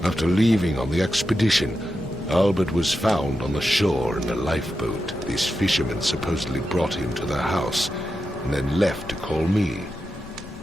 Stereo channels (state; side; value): normal; both; correlation 0.89